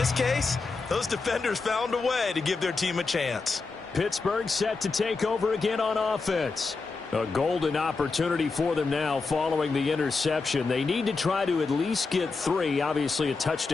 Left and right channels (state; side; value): quieter; right; 4.2 dB